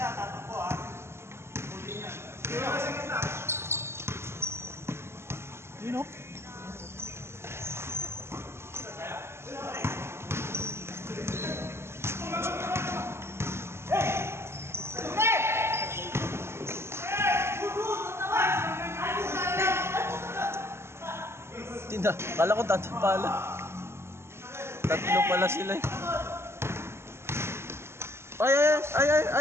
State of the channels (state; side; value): late; left; 0.12 ms